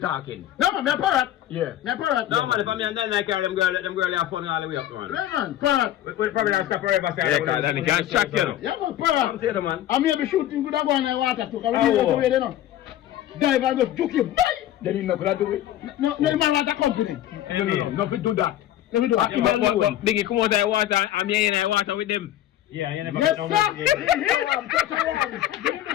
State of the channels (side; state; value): right; quieter; 12.7 dB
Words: No, man, me a parrot. Yeah. Me a parrot. No, man, if I'm here and then I carry them girl have fun all the way up, man. Yeah, man, parrot. We probably have to stop forever. Yeah, because then you can't track you, know. Yeah, man, I'm parrot. saying, man. I may be shooting good go in the water too, because we Oh. need to wait, you know. Dive and just juke you. Bye! Then you not gonna do it. No, man, like a company. No, nothing do that. Let me do it. But Bingy, come out of the water, I'm here in the water with them. Yeah, you never Yes, get no sir. money. Yeah, I'm just around. Give me the